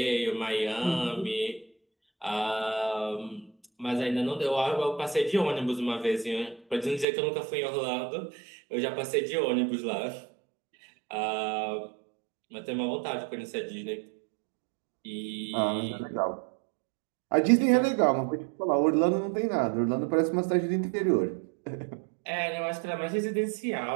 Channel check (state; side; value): drops out; left; at 7.1 s